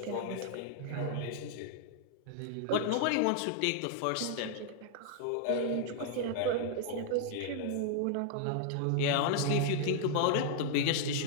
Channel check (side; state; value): both; different; correlation -0.01